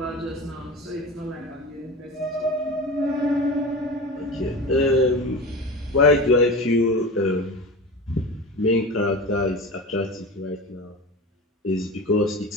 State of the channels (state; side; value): normal; both; correlation 0.30